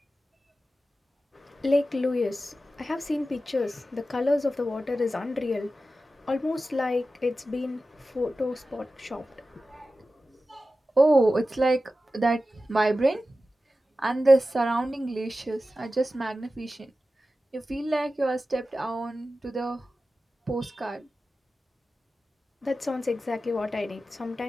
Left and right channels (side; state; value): both; normal; correlation 0.93